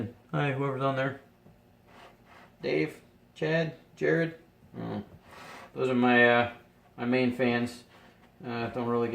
Hi, whoever's on there. Dave, Chad, Jared. Oh, those are my my main fans. Don't really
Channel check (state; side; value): identical; both; correlation 1.00